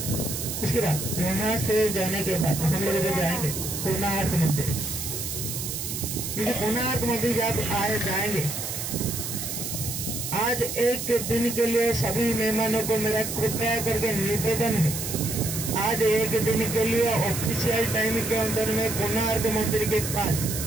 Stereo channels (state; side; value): noise; right; hiss, 5 dB below the sound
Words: उसके बाद वहां से जाने के बाद हम लोग जो जाएंगे कोणार्क मंदिर, क्योंकि कोणार्क मंदिर जब आए जाएंगे, आज एक दिन के लिए सभी मेहमानों को मेरा कृपया करके निवेदन है, आज एक दिन के लिए ऑफिशियल टाइम के अंदर में कोणार्क मंदिर के पास